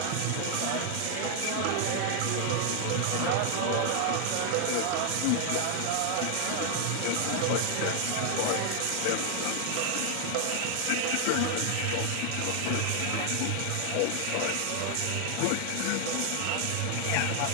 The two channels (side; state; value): both; different; correlation 0.00